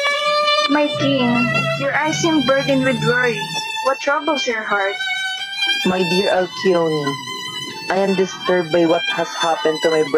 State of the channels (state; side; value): identical; both; correlation 1.00